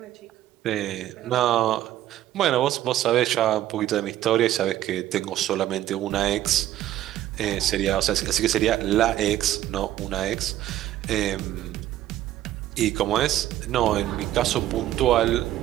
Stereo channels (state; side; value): quieter; left; 13.2 dB